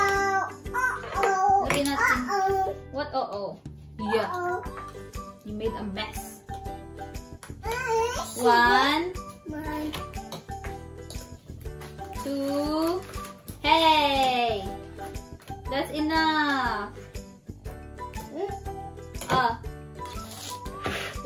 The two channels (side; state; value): both; identical; correlation 1.00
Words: Lagay natin... What? Yeah. You made a mess. 1, 2. Hey! That's enough.